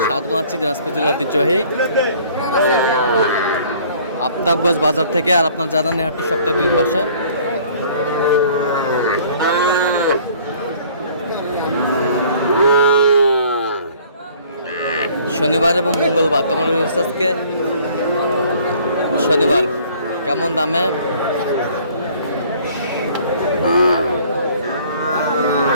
স্বাগত জানাচ্ছি দিনাজপুর জেলার ঐতিহ্যবাহী আফতাবগঞ্জ বাজার থেকে। আর আপনার জানান হাটটি সপ্তাহে 2 দিন বসে। শনিবার এবং মঙ্গলবার। তোমার আজকে শনিবার। কেমন দামে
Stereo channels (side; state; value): both; inverted; correlation -0.54